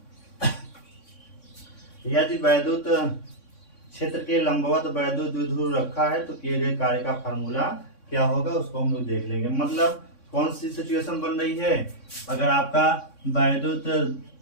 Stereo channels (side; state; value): right; late; 3.6 ms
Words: यदि वैद्युत क्षेत्र के लंबवत वैद्युत द्विध्रुव रखा है, तो किए गए कार्य का फार्मूला क्या होगा, उसको हम लोग देख लेंगे। मतलब कौन सी सिचुएशन बन रही है? अगर आपका वैद्युत